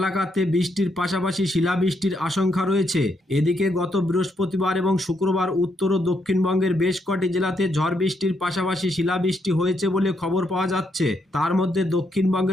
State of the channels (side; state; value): both; normal; correlation 0.77